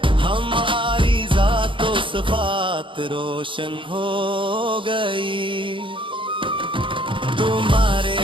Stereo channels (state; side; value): late; left; 0.25 ms